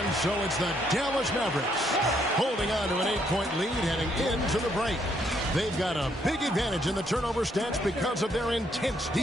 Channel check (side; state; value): both; normal; correlation 0.71